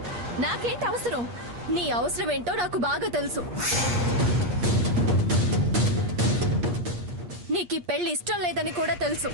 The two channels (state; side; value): late; left; 8.4 ms